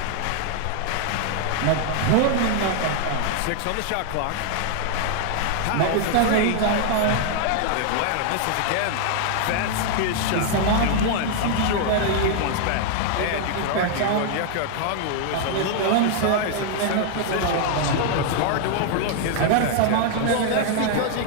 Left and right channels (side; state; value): both; different; correlation 0.00